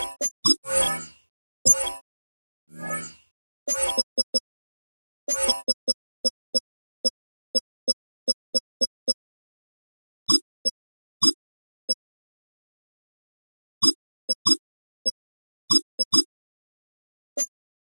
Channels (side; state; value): both; inverted; correlation -1.00